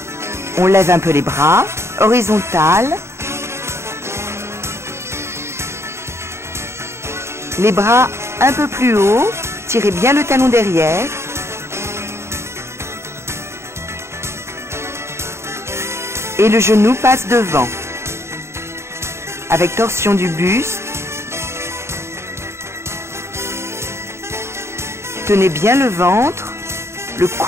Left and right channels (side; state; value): left; late; 0.13 ms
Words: On lève un peu les bras, horizontal. Les bras un peu plus haut, tirez bien le talon derrière. Et le genou passe devant. Avec torsion du buste. Tenez bien le ventre, le